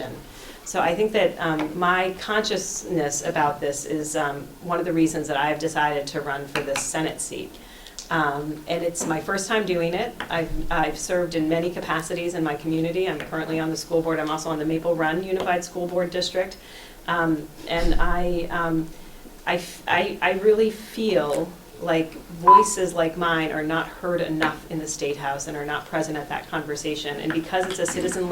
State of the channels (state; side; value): identical; both; correlation 1.00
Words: So I think that my consciousness about this is one of the reasons that I've decided to run for this Senate seat. And it's my first time doing it. I've served in many capacities in my community. I'm currently on the school board. I'm also on the Maple Run Unified School Board District. And I really feel like voices like mine are not heard enough in the State House and are not present at that conversation. And because it's a citizen